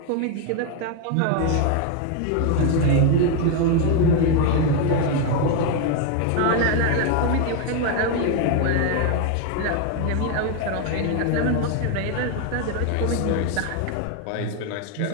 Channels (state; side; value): different; both; correlation 0.01